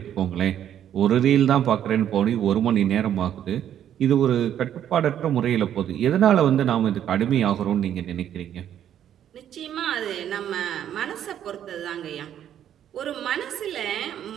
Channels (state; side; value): quieter; left; 10.2 dB